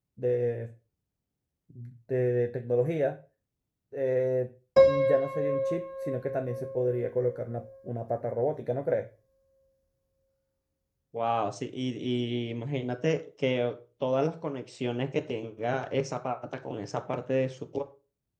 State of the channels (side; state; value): both; identical; correlation 1.00